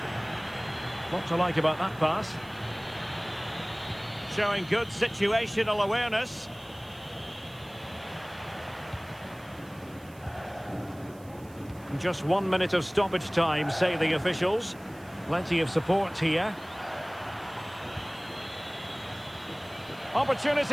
What to like about that pass? Showing good situational awareness. Just 1 minute of stoppage time, say the officials. Plenty of support here.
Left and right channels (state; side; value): noise; right; hiss, 25 dB below the sound